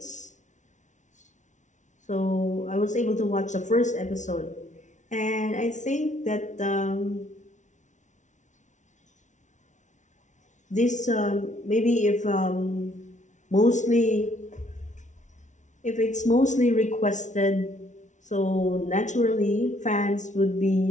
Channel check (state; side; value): late; right; 0.36 ms